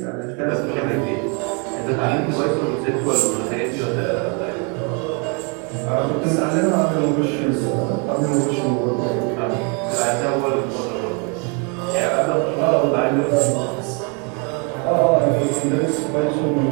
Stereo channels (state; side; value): quieter; left; 35.4 dB